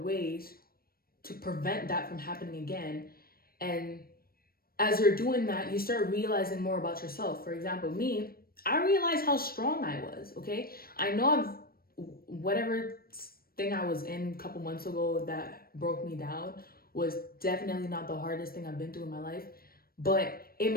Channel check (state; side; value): late; right; 0.44 ms